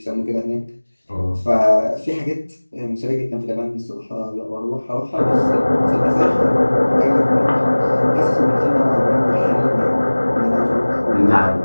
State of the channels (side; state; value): both; inverted; correlation -1.00